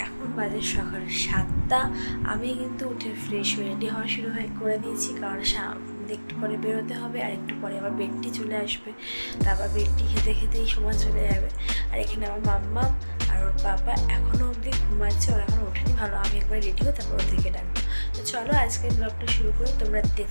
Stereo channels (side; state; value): both; inverted; correlation -1.00